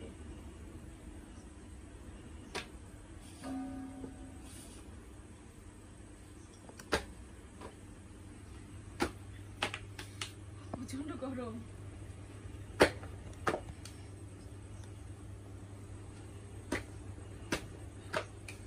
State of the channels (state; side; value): identical; both; correlation 1.00